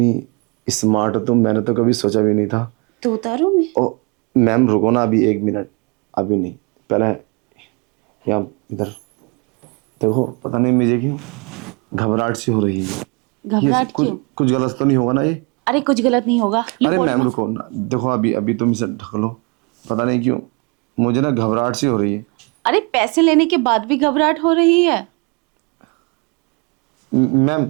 स्मार्ट हो तुम, मैंने तो कभी सोचा भी नहीं था। तो उतारूँ मैं? ओ मैम रुको ना, अभी 1 मिनट, अभी नहीं, पहले यहाँ इधर देखो, पता नहीं मुझे क्यों घबराहट सी हो रही है। ये घबराहट कुछ क्यों? कुछ गलत तो नहीं होगा ना ये? अरे कुछ गलत नहीं होगा। ये अरे बॉडी मैम रुको ना, देखो अभी अभी तुम इसे ढक लो, पता नहीं क्यों मुझे ना घबराहट सी हो रही है। अरे पैसे लेने के बाद भी घबराहट हो रही है? मैम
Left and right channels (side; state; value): left; quieter; 31.4 dB